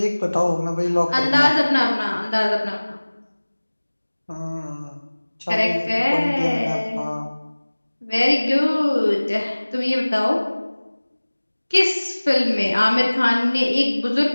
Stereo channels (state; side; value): inverted; both; correlation -1.00